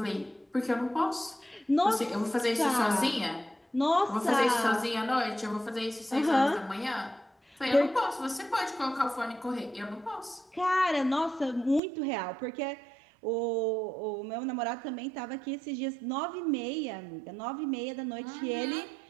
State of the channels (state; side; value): drops out; left; at 11.8 s